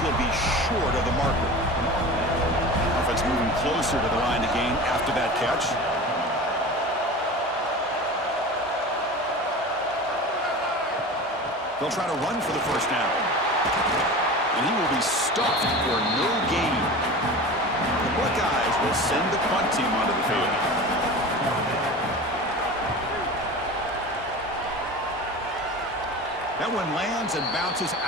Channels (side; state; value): both; normal; correlation 0.33